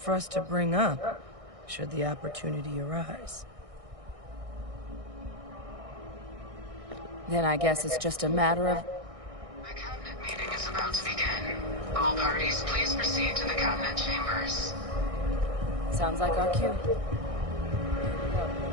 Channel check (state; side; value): late; left; 1.6 ms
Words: for us to bring up, should the opportunity arise. Then I guess it's just a matter of... The cabinet meeting is about to begin. All parties, please proceed to the cabinet chambers. Sounds like our cue.